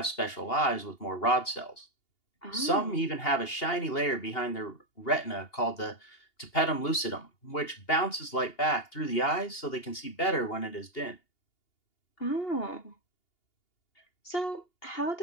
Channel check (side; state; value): right; late; 2.8 ms